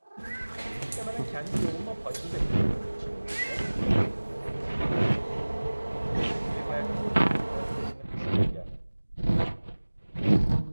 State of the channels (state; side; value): inverted; both; correlation -1.00